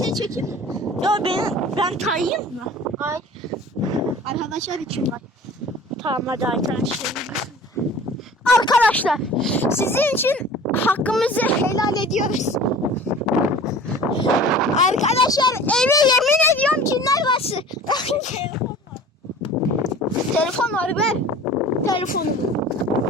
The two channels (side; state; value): both; normal; correlation 0.43